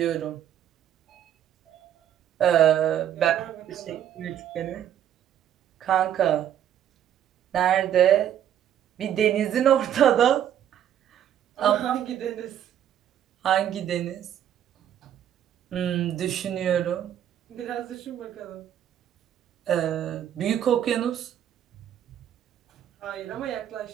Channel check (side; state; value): left; quieter; 10.4 dB